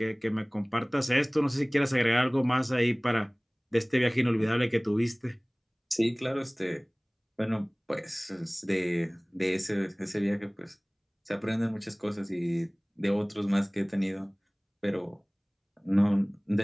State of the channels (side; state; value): both; identical; correlation 1.00